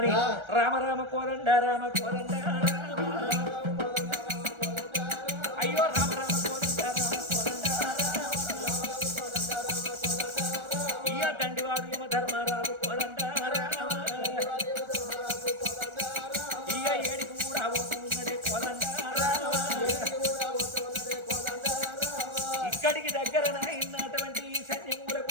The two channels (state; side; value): late; left; 1.3 ms